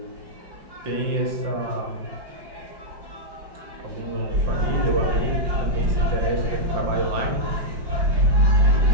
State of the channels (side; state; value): left; late; 5.7 ms